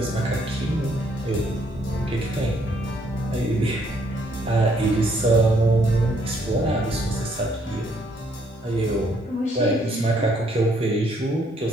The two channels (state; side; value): normal; both; correlation 0.68